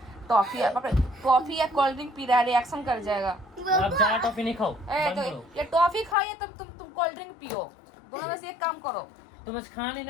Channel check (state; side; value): drops out; right; at 6.2 s